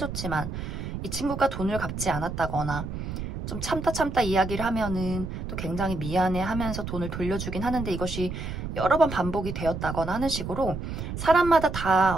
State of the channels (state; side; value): noise; right; rumble, 6 dB below the sound